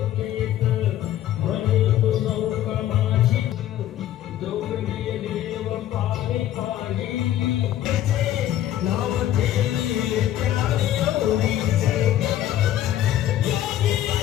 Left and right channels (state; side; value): quieter; right; 12.3 dB